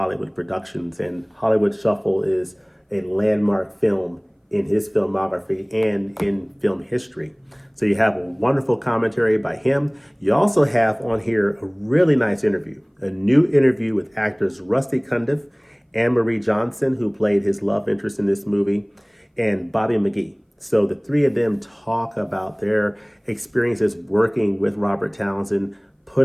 productions. And Hollywood Shuffle is a landmark film in his filmography and in film history. So you have a wonderful commentary by him. You also have on here a really nice interview, a new interview with actors Rusty Cundiff, Anne-Marie Johnson, who played his love interest in this movie, and Bobby McGee. So the three of them talk about their experiences working with Robert Townsend,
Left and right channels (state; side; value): identical; both; correlation 1.00